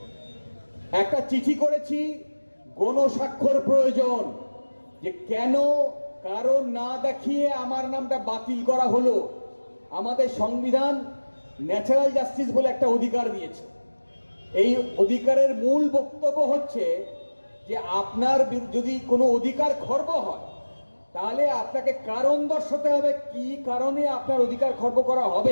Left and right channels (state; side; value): inverted; both; correlation -1.00